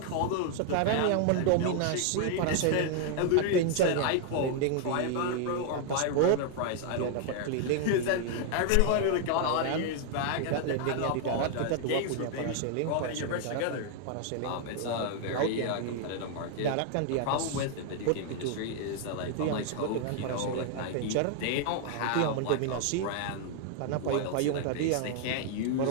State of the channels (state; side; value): different; both; correlation 0.00